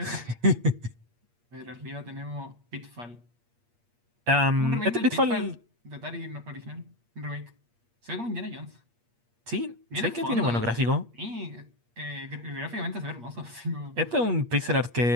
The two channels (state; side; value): late; left; 8.5 ms